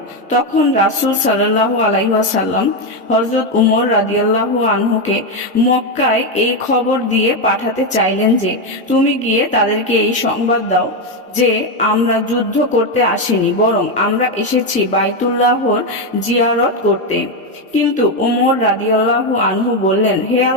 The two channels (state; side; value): normal; both; correlation 0.08